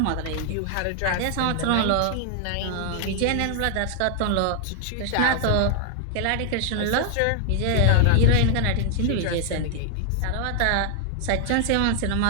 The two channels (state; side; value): different; both; correlation 0.00